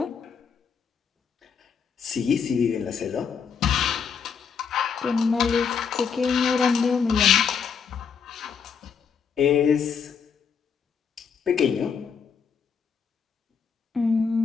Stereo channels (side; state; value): right; quieter; 6.4 dB